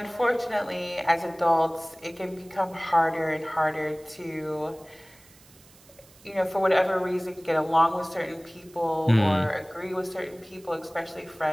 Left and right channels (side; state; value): right; noise; hiss, 26 dB below the sound